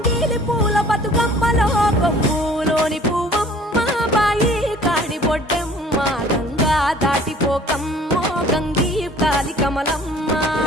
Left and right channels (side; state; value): both; normal; correlation 0.51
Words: పూల బతుకమ్మలో కొమ్ములోని పువ్వమ్మ బాయి కాడి బొడ్డెమ్మ గంగా దాటిపోకమ్మో గంగీ తాలి కమలమ్మ